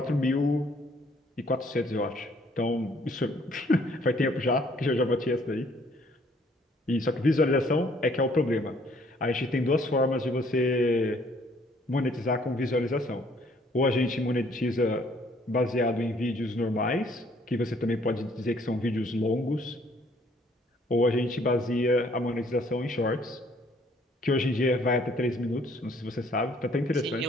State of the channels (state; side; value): normal; both; correlation 0.62